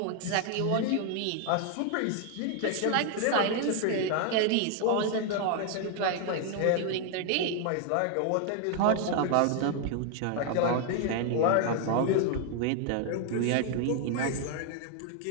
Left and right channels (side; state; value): both; different; correlation 0.00